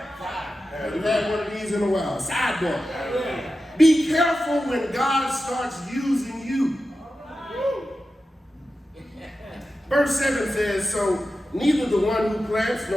Haven't had one of these in a while. Sidebar. Be careful when God starts using you. Verse 7 says, so neither the one who plants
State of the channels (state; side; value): normal; both; correlation 0.92